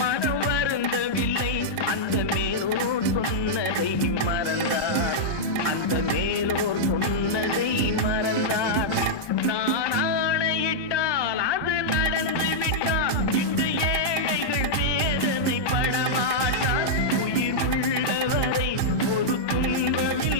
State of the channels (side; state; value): right; late; 1.2 ms